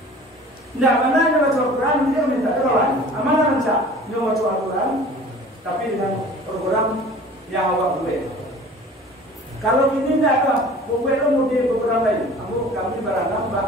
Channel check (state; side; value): normal; both; correlation 0.45